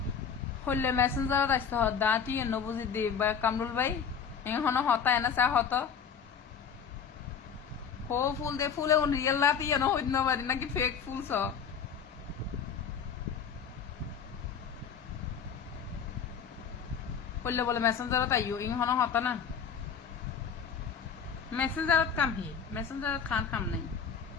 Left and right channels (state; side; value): quieter; right; 6.9 dB